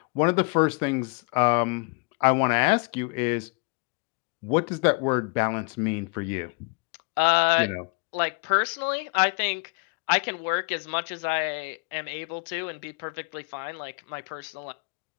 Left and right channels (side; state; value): right; quieter; 33.2 dB